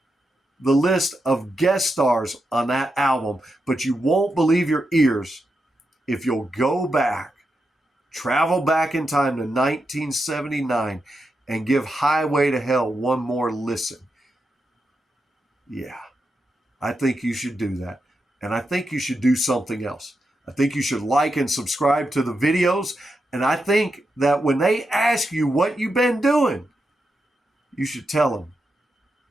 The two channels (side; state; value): both; normal; correlation 0.86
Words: the list of guest stars on that album. But you won't believe your ears if you'll go back, travel back in time to 1979, and give Highway to Hell one more listen. Yeah, I think you should do that. And I think you should do something else. I think you should like and subscribe to the videos. And I think that when they ask you what you've been doing, you should tell them,